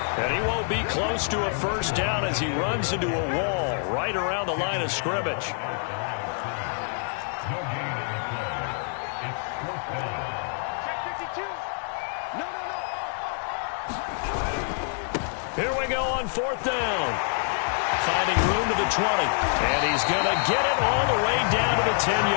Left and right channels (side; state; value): right; silent; 61 dB below the other